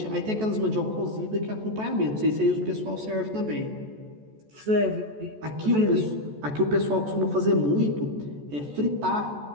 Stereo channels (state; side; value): late; left; 14 ms